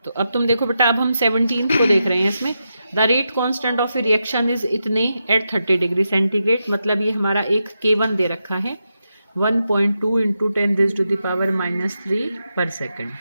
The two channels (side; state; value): both; inverted; correlation -0.87